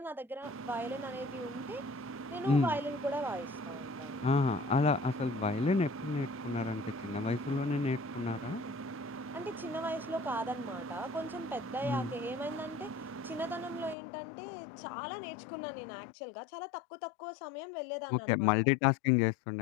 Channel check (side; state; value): right; drops out; at 14.0 s